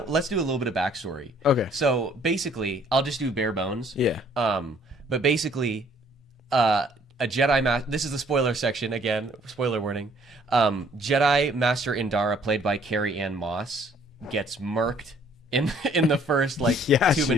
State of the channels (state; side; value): normal; both; correlation 0.60